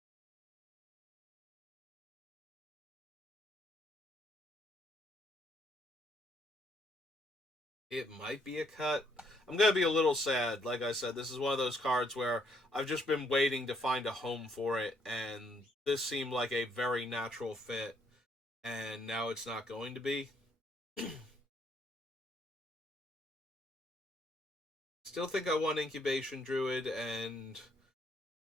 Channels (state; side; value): normal; both; correlation 0.70